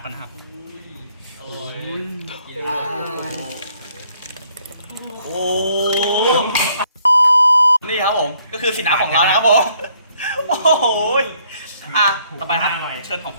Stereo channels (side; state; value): both; inverted; correlation -0.66